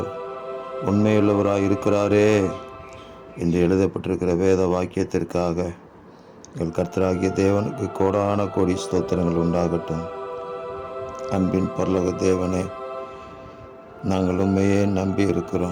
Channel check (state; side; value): identical; both; correlation 1.00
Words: உண்மையுள்ளவராக இருக்கிறாரே என்று எழுதப்பட்டிருக்கிற வேத வாக்கியத்திற்காக எங்கள் கர்த்தராகிய தேவனுக்கு கோடான கோடி ஸ்தோத்திரங்கள் உண்டாகட்டும். அன்பின் பரலோக தேவனே, நாங்கள் உண்மையே நம்பி